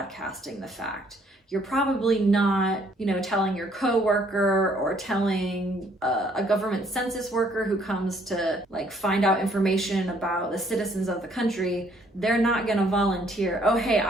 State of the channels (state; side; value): normal; both; correlation 0.64